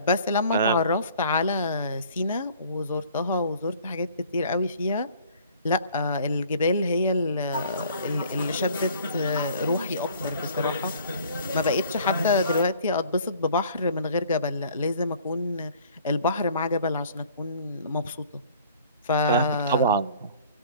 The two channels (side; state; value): both; inverted; correlation -0.53